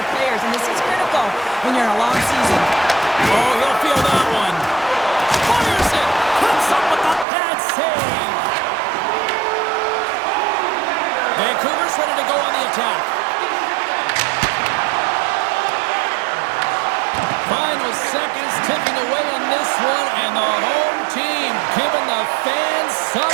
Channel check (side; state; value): left; drops out; at 7.2 s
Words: players, and this is critical when you're in a long season. Oh, you'll feel that one. Fires it. Comes up with a bad save. Vancouver's ready to go on the attack. Final seconds ticking away on this one, and the home team giving the fans